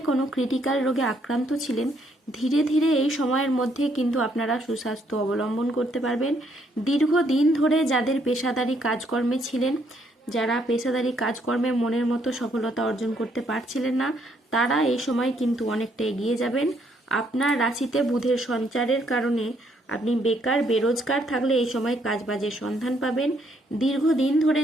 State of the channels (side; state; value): both; normal; correlation 0.70